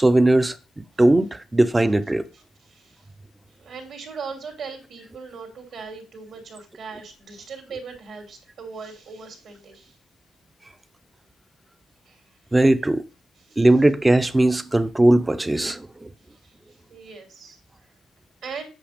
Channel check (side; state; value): both; normal; correlation 0.98